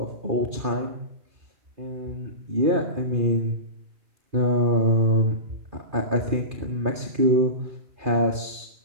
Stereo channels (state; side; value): late; left; 2.4 ms